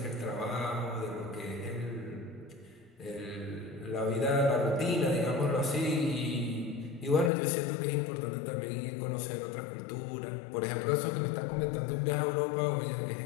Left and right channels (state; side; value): drops out; right; at 7.3 s